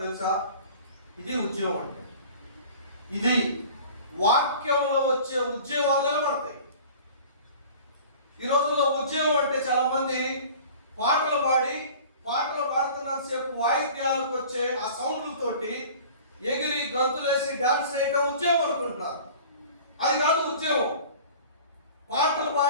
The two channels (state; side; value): inverted; both; correlation -0.43